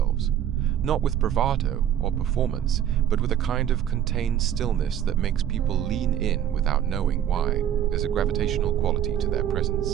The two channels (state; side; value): quieter; left; 10.3 dB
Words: Not with bravado or performance, but with a kind of contained stillness that makes people lean in without knowing why. There's a gravitational quality to their